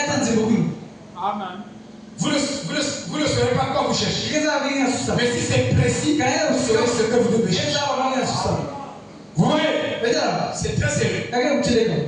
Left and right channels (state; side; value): identical; both; correlation 1.00